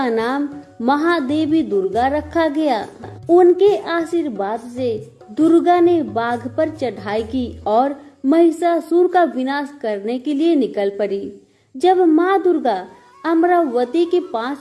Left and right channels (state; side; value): identical; both; correlation 1.00